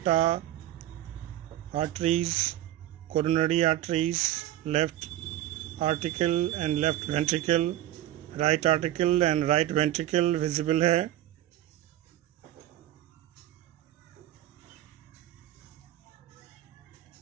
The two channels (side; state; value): left; quieter; 13.5 dB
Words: arteries, coronary arteries, left article and left ventricle, right article and right ventricle visible है।